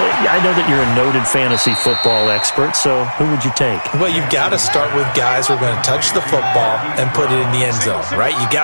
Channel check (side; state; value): both; inverted; correlation -1.00